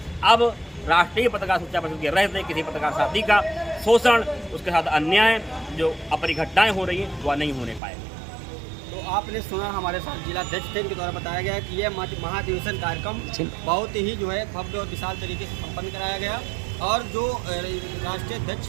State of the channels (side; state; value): left; drops out; at 7.8 s